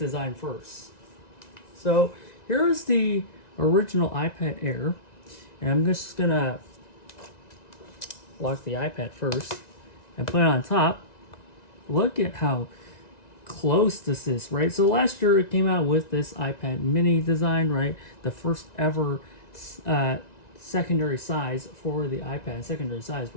first. So here's the original iPad Air. And I'm just going to lock the iPad first and put it on top. Look at how close this is, right? So last year it came out with this iPad mini design, right? The first ever secondary size for the iPad, secondary size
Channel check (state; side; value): late; right; 1.9 ms